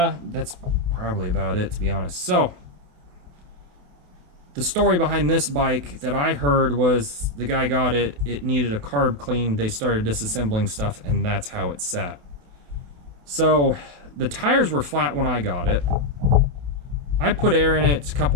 probably about it, to be honest. So the story behind this bike that I heard was the guy got it, it needed a carb clean, they started disassembling stuff, and that's how it sat. So the tires were flat when I got it. I put air in it a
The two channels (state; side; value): late; left; 28 ms